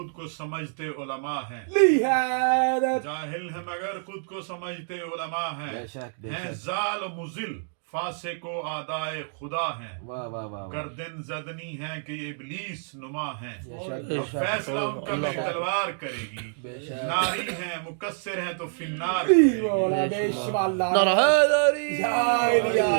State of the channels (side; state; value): left; silent; digital silence